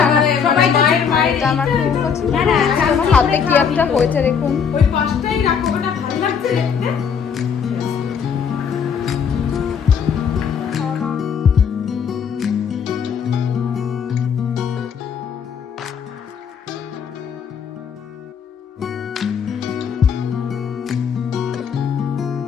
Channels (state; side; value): quieter; right; 6.9 dB